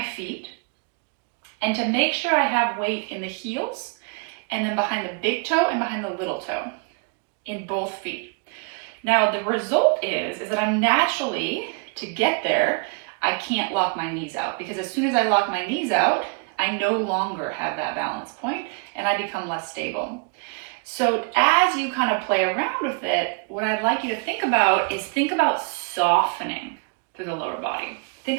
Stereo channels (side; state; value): left; quieter; 34.7 dB